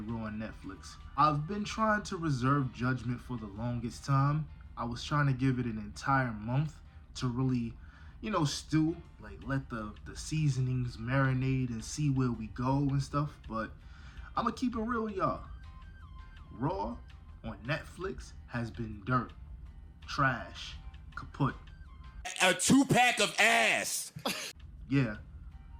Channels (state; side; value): identical; both; correlation 1.00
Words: Raw on Netflix. I've been trying to reserve judgment for the longest time. I was trying to give it an entire month to really, stew. Like, let the seasonings marinate and see where we go and stuff. But I'm going to keep it real with y'all. Raw on Netflix has been dirt. Trash. Kaput. A 2-pack of ass. Yeah.